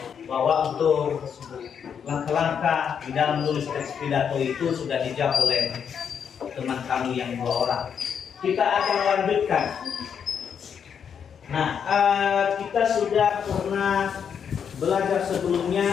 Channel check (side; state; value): right; quieter; 7.5 dB